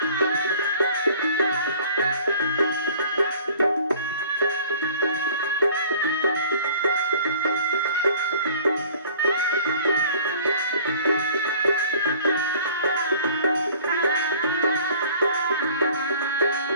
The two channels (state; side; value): inverted; both; correlation -0.50